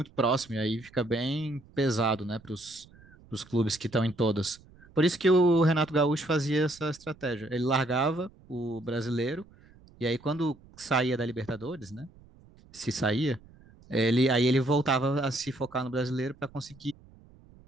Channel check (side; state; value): right; noise; rumble, 25 dB below the sound